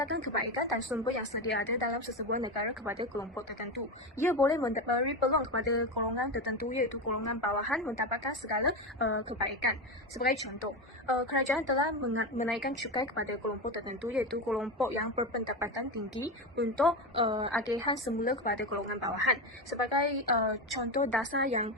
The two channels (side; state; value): both; normal; correlation 0.17